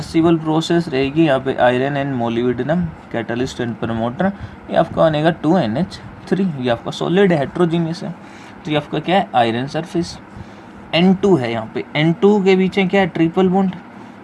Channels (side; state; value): both; identical; correlation 1.00